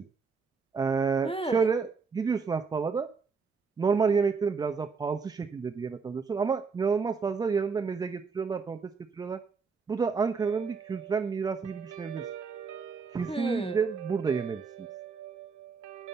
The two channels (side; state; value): left; quieter; 5.1 dB